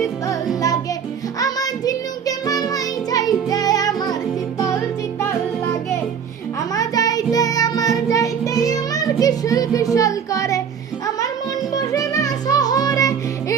শীতল লাগে, আমার ঝিনুকে মালাই চাইতে আমার শীতল শীতল লাগে। আমার যাইতে আমার কিশোর কিশোর করে, আমার মন বসে না শহরে,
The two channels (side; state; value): left; quieter; 7.2 dB